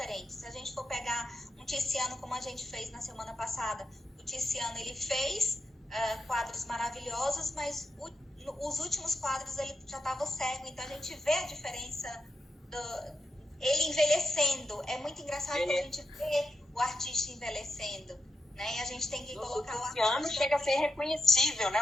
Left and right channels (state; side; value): normal; both; correlation 0.85